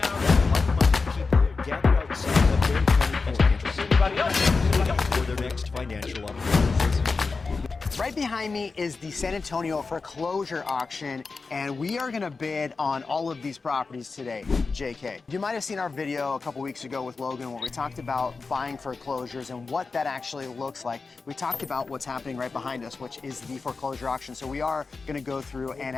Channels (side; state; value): right; quieter; 4.3 dB